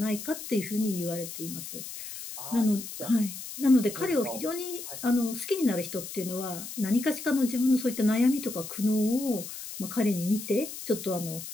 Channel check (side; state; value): left; noise; hiss, 10 dB below the sound